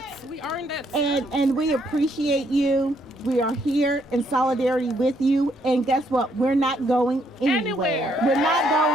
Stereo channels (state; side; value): normal; both; correlation 0.71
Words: earned it. And we appreciate you. We are here in solidarity with you. And guess what? We're not going anywhere. We're not